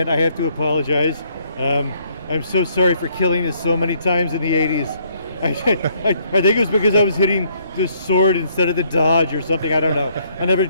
I have to apologize. I'm so sorry for killing you so many times in the 80s. I think it was because I was hitting the sword instead of the dodge or something. I don't know. I never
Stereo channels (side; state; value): both; inverted; correlation -0.67